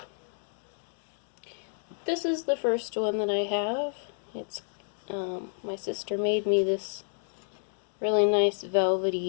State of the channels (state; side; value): silent; right; digital silence